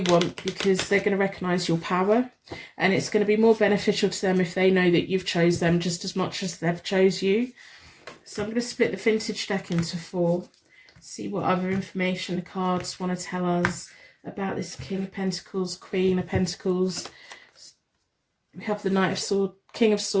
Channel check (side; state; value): both; identical; correlation 1.00